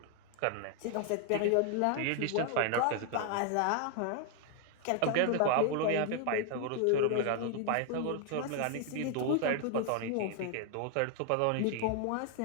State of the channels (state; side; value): different; both; correlation 0.00